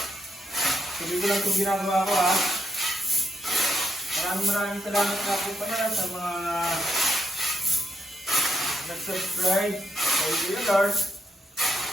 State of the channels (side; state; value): both; normal; correlation 0.79